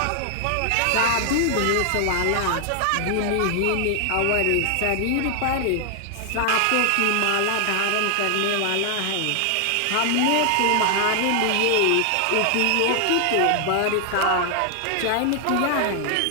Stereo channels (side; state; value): both; different; correlation 0.00